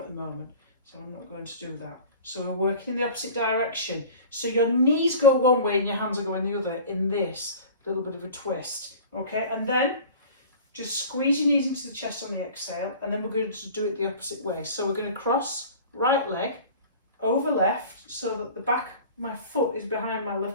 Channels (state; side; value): inverted; both; correlation -0.41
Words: at the moment, so I'm not going to do that. So we're working in the opposite direction. So your knees go one way and your hands are going the other in this little bit of a twist. Okay, and then just squeeze your knees into the chest on the exhale, and then we're going to do it the opposite way. So we're going to cross right leg over left so that the back of my foot is behind my